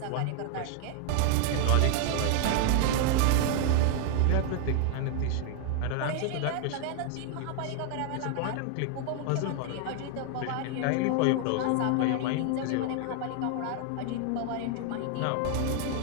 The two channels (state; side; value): different; both; correlation 0.00